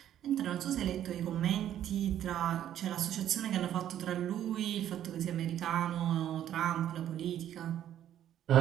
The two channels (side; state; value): left; quieter; 11.1 dB